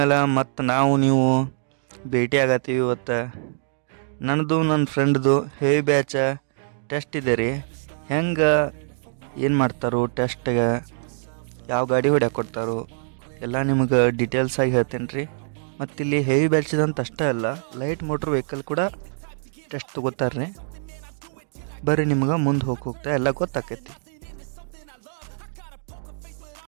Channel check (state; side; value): silent; left; digital silence